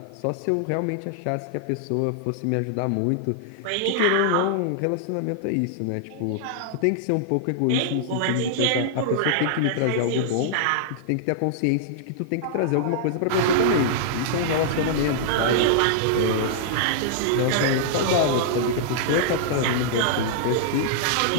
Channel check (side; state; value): both; different; correlation -0.01